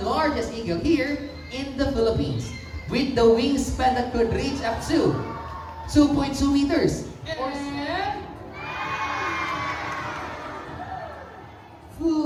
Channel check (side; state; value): both; identical; correlation 1.00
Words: largest eagle here in the Philippines, with the wingspan that could reach up to 2.2 meters. Or